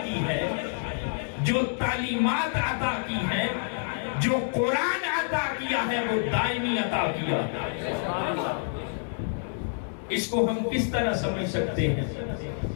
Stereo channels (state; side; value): silent; right; digital silence